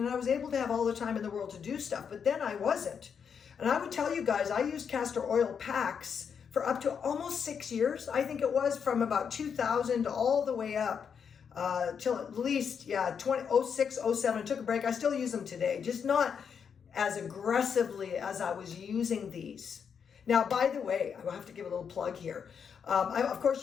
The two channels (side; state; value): right; quieter; 7.0 dB